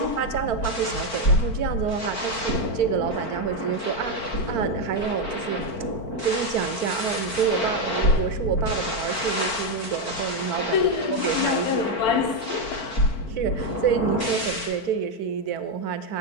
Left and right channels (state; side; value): late; right; 4.5 ms